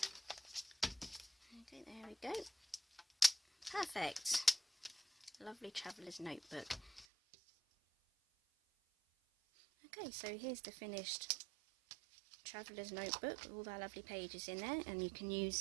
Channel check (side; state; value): left; drops out; at 7.1 s